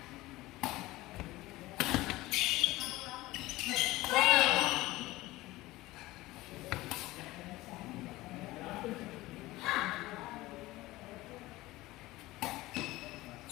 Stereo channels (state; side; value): quieter; right; 18.7 dB